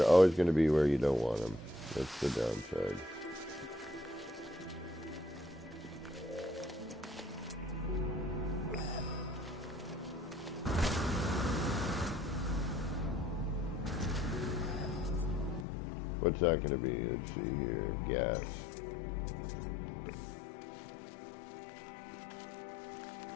always going to be where you don't want them. That's the downside. What's that going to be? Let's see here. Gas.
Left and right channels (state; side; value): drops out; right; at 15.7 s